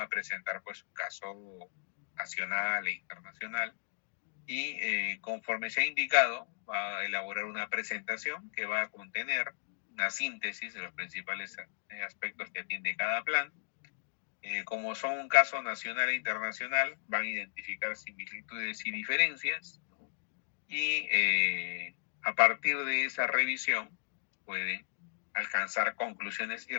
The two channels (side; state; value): right; silent; digital silence